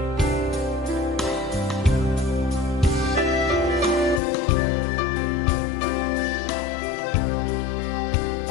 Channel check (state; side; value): drops out; right; at 4.2 s